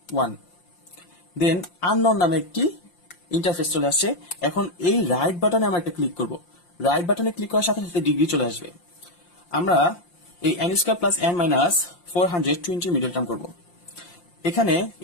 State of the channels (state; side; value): late; right; 5.7 ms